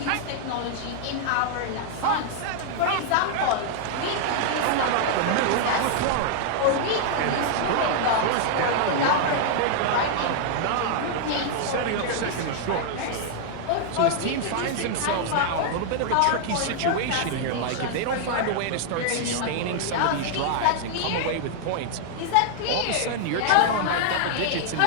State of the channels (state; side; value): different; both; correlation -0.01